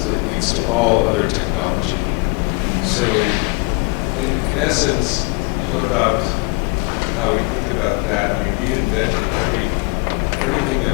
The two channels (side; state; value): right; quieter; 28.8 dB